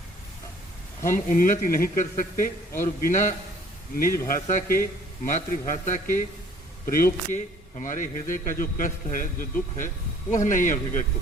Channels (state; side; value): normal; both; correlation 0.56